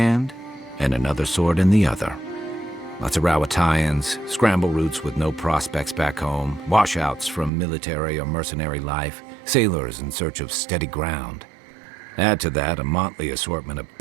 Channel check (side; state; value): left; drops out; at 7.5 s